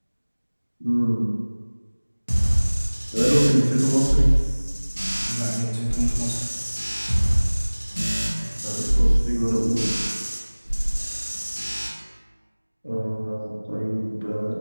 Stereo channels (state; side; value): inverted; both; correlation -1.00